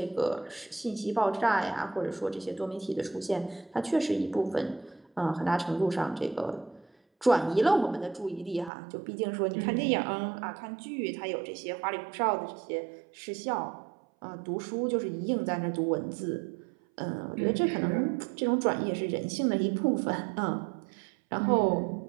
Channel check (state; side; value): drops out; left; at 8.7 s